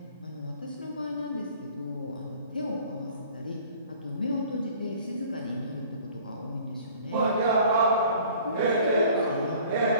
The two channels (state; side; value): inverted; both; correlation -0.51